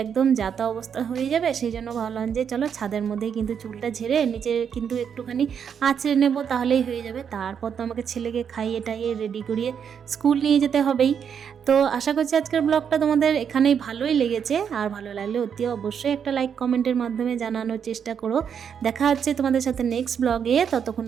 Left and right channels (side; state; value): left; quieter; 7.5 dB